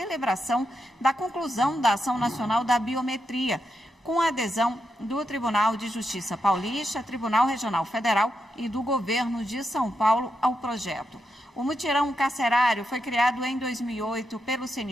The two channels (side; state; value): both; normal; correlation 0.84